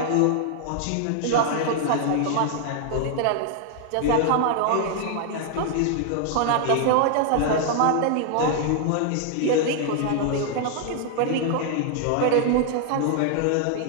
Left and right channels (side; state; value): both; different; correlation 0.00